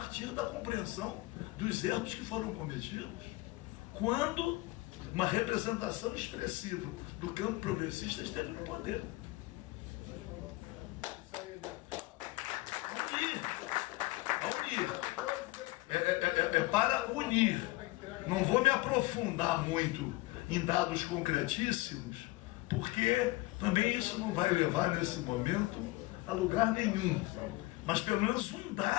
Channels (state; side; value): quieter; right; 20.9 dB